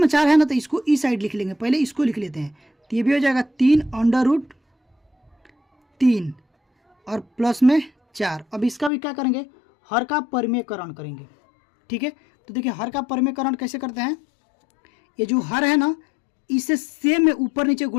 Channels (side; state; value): right; drops out; at 8.9 s